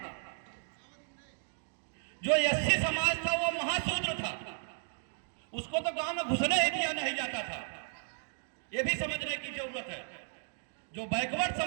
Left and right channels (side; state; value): left; silent; 55 dB below the other